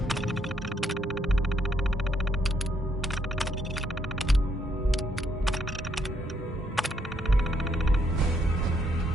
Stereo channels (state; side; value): normal; both; correlation 0.73